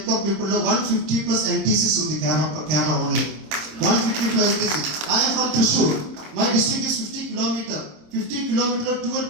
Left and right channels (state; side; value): late; left; 26 ms